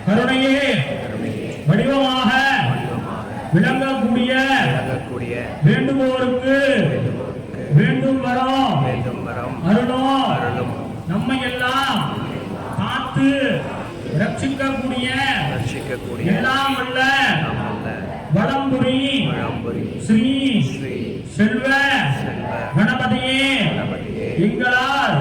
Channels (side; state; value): both; identical; correlation 1.00